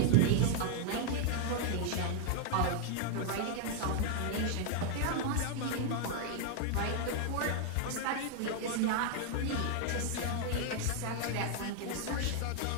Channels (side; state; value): both; different; correlation -0.01